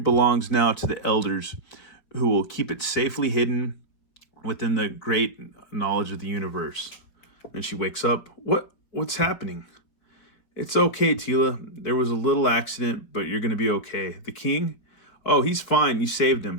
now to the elders, who will keep it safely hidden within the great knowledge of the universe. And she wakes up. What's happening? It's okay, Teela. There was a little accident, but you're going to be okay. The king? Oh, he's fine. You saved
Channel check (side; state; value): right; late; 4.7 ms